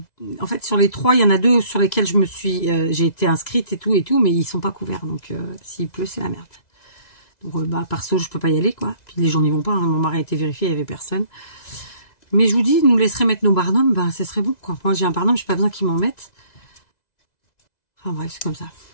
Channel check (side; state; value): right; late; 2.0 ms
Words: fait, sur les 3, il y en a 2 sur lesquels j'ai été inscrite et tout, mais ils sont pas couverts. Donc, s'il pleut, c'est la merde. Donc, bah, perso, je peux pas y aller, quoi. Puis les gens n'y vont pas. Hein. Mon mari a été vérifié, il y avait personne. Mais je vous dis, nous laisserait mettre nos barnums, bah, ce serait bon, quoi. Moi, j'ai un barnum, j'ai pas besoin qu'ils m'en mettent. Enfin bref, c'est comme ça.